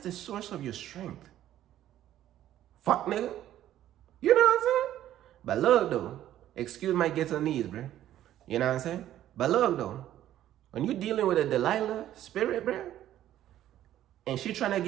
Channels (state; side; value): quieter; left; 12.4 dB